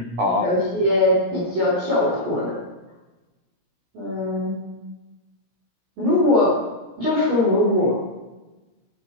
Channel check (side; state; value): left; late; 17 ms